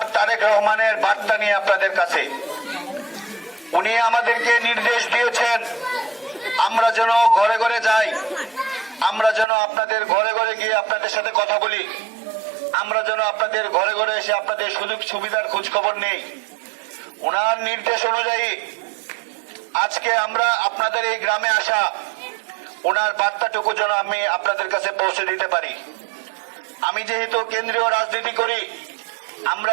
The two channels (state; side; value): drops out; left; at 9.5 s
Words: তারেক রহমানের বার্তা নিয়ে আপনাদের কাছে। উনি আমাদেরকে নির্দেশ দিয়েছেন আমরা যেন ঘরে ঘরে যাই, আমরা যেন আপনাদের ঘরে ঘরে গিয়ে আপনাদের সাথে কথা বলি, আমরা যেন আপনাদের ঘরে ঘরে এসে আপনাদের সুযোগ সুবিধার খোঁজ খবর নেই। ওনার নির্দেশ অনুযায়ী আজকে আমরা আপনাদের এই গ্রামে আসা, ওনার বার্তাটুকু যেন আমি আপনাদের কাছে পৌঁছে দিতে পারি। আমি যেহেতু কেন্দ্রীয় রাজনীতি করি, আমরা